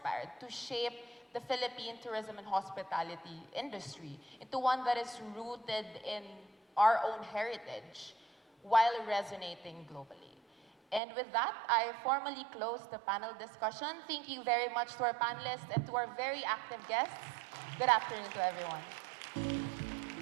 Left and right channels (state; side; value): drops out; left; at 11.0 s